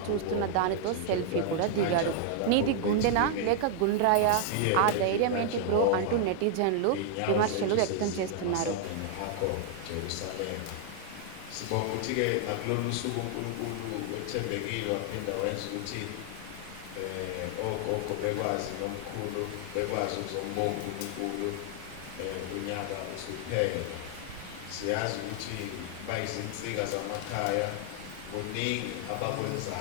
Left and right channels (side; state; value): both; different; correlation 0.00